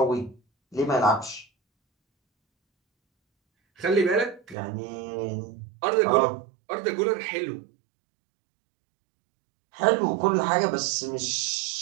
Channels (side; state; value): left; drops out; at 4.5 s